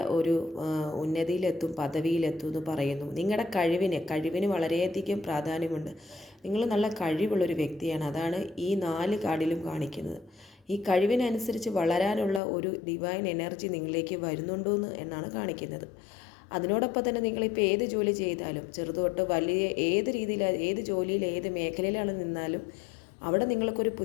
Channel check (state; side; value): drops out; right; at 12.4 s